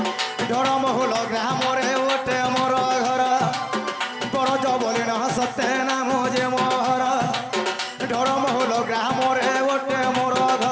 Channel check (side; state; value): both; identical; correlation 1.00